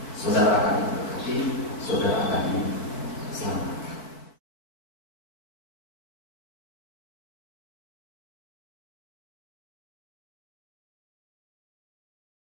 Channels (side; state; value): right; late; 4.7 ms